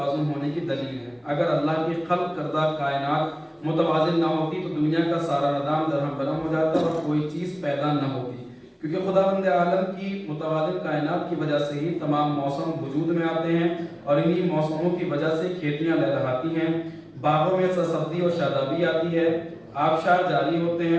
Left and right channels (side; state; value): both; identical; correlation 1.00